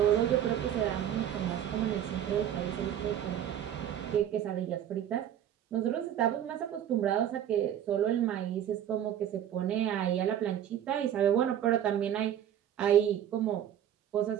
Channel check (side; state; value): left; quieter; 10.4 dB